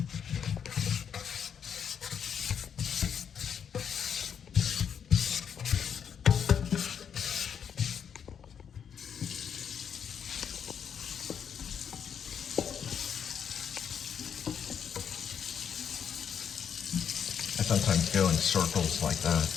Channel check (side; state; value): right; quieter; 7.8 dB